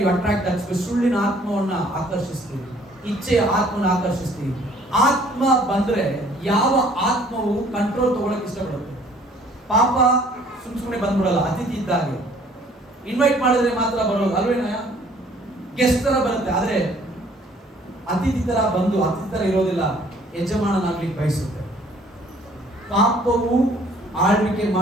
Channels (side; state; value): both; normal; correlation 0.58